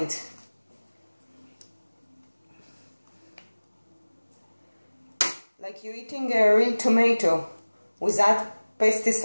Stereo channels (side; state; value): both; inverted; correlation -1.00